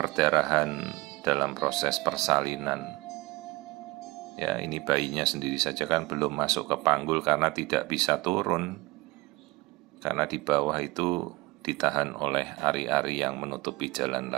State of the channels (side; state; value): left; quieter; 21.8 dB